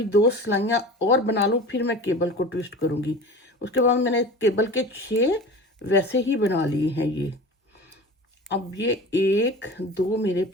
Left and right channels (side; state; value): both; normal; correlation 0.36